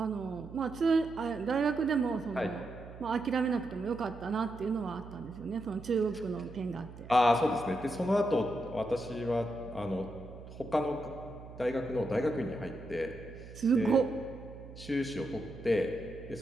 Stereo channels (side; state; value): right; noise; hum, 15 dB below the sound